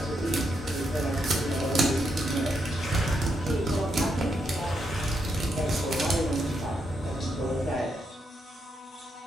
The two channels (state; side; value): normal; both; correlation 0.80